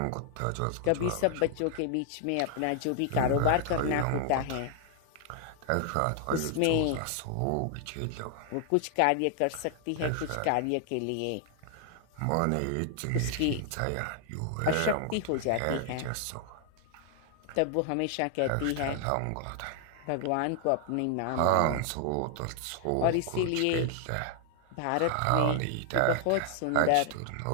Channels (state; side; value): different; both; correlation 0.00